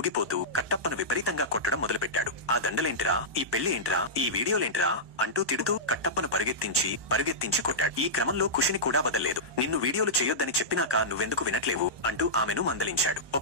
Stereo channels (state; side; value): late; left; 1.2 ms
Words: కట్టప్పను విపరీతంగా కొట్టడం మొదలుపెట్టాడు. ఆ దండలేంట్రా, ఈ పెళ్లి ఏంట్రా, ఈ వీడియోలేంట్రా అంటూ తిడుతూ కట్టప్పను పరుగెత్తించి కొట్టాడు. ఈ క్రమంలో ఖుషిని కూడా వదల్లేదు. నిన్ను వీడియోలు చేయొద్దని చెప్పినాక నువ్వెందుకు వినట్లేవు అంటూ ఆమెను మందలించాడు.